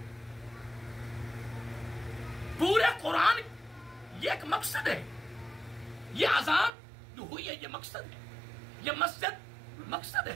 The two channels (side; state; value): left; drops out; at 6.7 s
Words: پورے قرآن یہ ایک مقصد ہے، یہ اذان جو ہوئی ہے یہ مقصد ہے، یہ مسجد مقصد